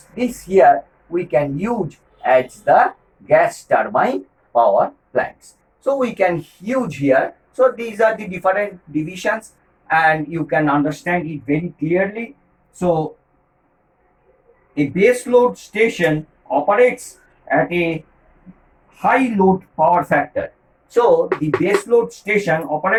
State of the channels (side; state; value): both; identical; correlation 1.00